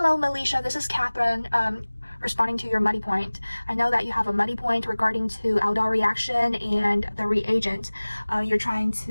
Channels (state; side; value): inverted; both; correlation -1.00